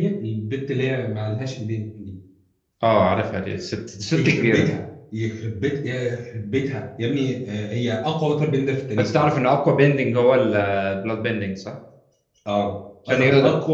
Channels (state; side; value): identical; both; correlation 1.00